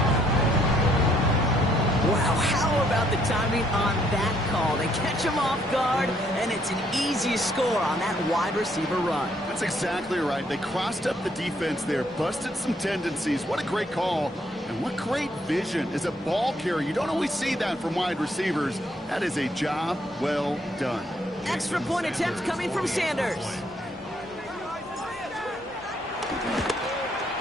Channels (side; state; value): both; normal; correlation 0.69